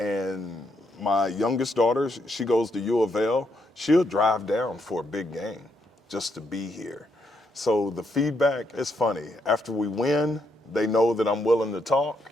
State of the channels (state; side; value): normal; both; correlation 0.78